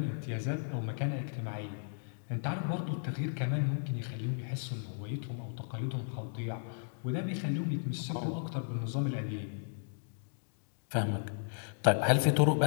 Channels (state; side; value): silent; right; digital silence